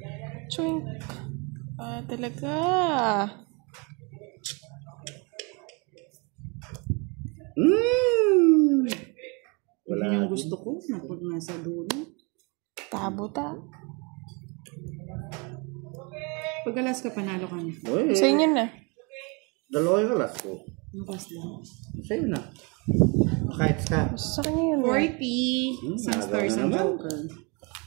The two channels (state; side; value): quieter; left; 31.0 dB